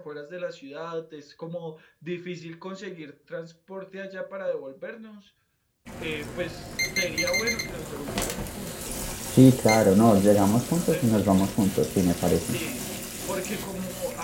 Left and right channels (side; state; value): both; identical; correlation 1.00